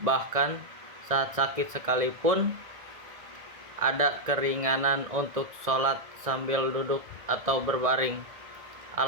bahkan saat sakit sekalipun. Ada keringanan untuk sholat sambil duduk atau berbaring.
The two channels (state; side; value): late; left; 1.8 ms